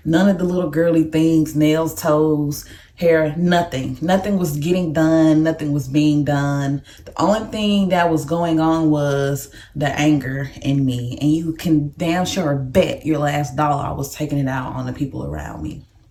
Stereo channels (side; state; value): both; identical; correlation 1.00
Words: none of the little girly things, nails, toes, hair, nothing was getting done, nothing was being done. The only thing that was going on was the anger in me, and you can damn sure bet your last dollar I was taking it out on the people around me,